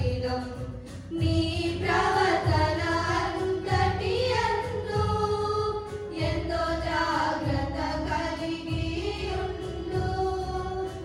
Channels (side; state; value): both; identical; correlation 1.00